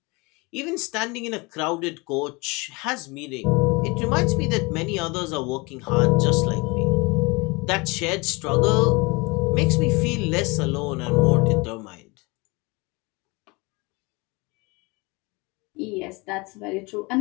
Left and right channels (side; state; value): right; quieter; 26.3 dB